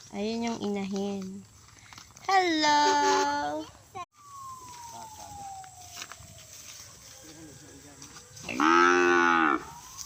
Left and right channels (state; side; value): identical; both; correlation 1.00